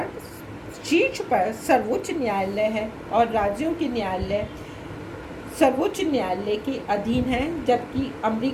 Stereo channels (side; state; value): both; identical; correlation 1.00